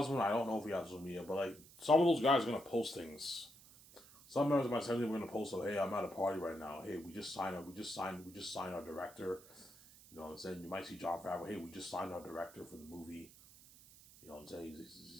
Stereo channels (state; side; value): noise; right; hiss, 21 dB below the sound